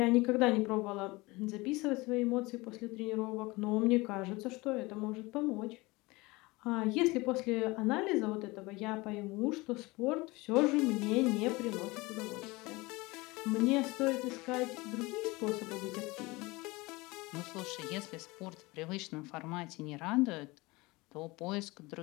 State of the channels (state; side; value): quieter; right; 22.8 dB